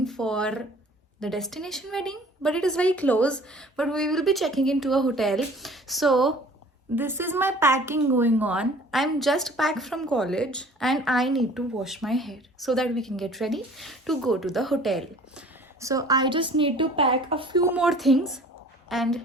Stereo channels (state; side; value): normal; both; correlation 0.49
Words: for the destination wedding, but it is very close, but we will be checking into a hotel. So this is my packing going on. I'm just back from college and I need to wash my hair so that we can get ready to go to the hotel. So I just need to pack a few more things and